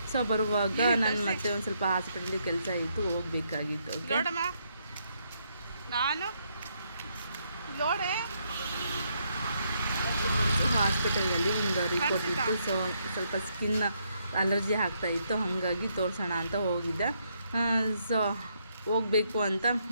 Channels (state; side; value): inverted; both; correlation -0.75